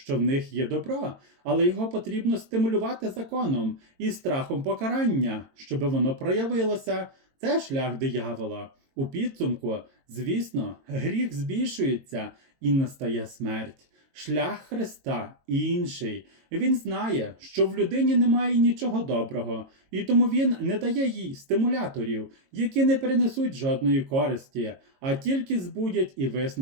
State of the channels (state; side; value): late; left; 22 ms